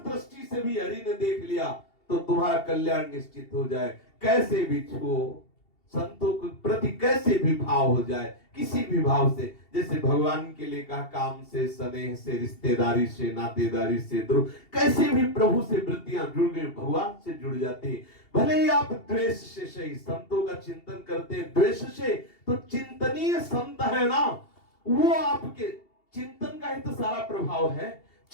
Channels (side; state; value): right; late; 2.7 ms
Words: से भी हरि ने देख लिया तो तुम्हारा कल्याण निश्चित हो जाए। कैसे भी छुओ, संतों के प्रति कैसे भी भाव हो जाए, किसी भी भाव से, जैसे भगवान के लिए कहा काम से, स्नेह से, रिश्तेदारी से, नातेदारी से, द्रोह, कैसे भी प्रभु से वृत्तियां जुड़ गई, भगवान से जुड़ जाती। भले ही आप द्वेष से सही संतों का चिंतन करते हैं, द्वेष से तो चिंतनीय संत है ना, वो आपके चिंतन का ही तो सारा प्रभाव है।